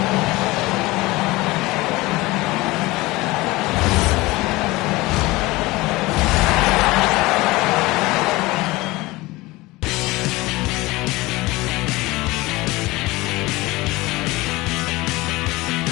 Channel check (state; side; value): quieter; right; 20.8 dB